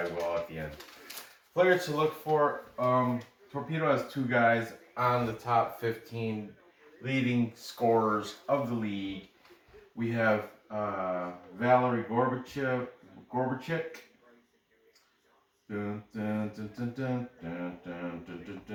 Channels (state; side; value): identical; both; correlation 1.00